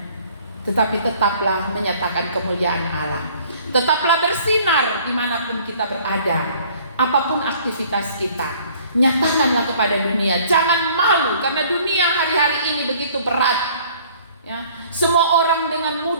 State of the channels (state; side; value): inverted; both; correlation -0.55